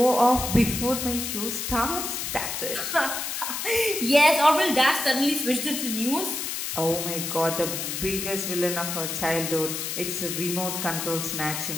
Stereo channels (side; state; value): left; noise; hiss, 4 dB below the sound